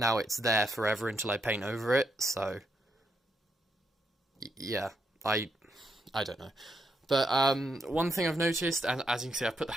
it's there forever until I paint over it, so yeah, I don't know. But one thing I've noticed, and as you can see, I've put the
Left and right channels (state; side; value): normal; both; correlation 0.79